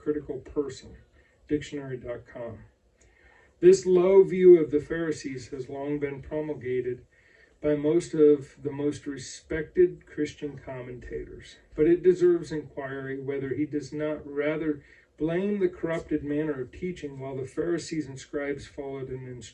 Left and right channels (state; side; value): identical; both; correlation 1.00